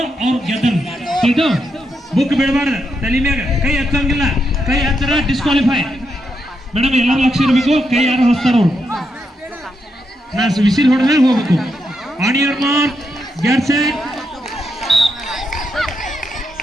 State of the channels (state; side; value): normal; both; correlation 0.82